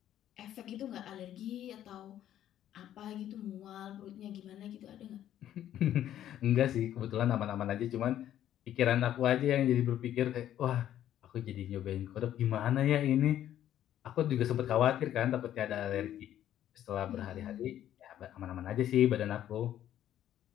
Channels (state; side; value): quieter; right; 11.5 dB